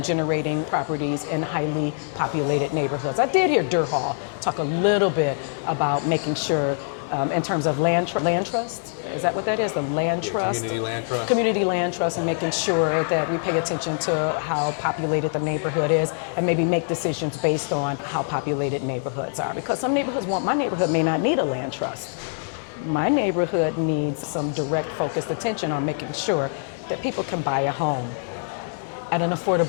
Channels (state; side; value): silent; right; digital silence